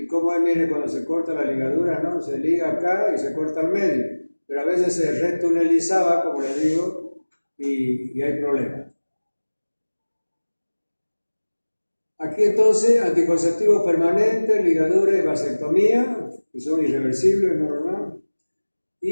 como mire, cuando se corta la ligadura, ¿no? Se liga acá y se corta al medio, pero a veces se retunelizaba, como les digo, y hay problemas. Aquí entonces, anticonceptivos permanentes, ligadura y vasectomía, que son irreversibles, normal.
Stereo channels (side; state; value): both; inverted; correlation -1.00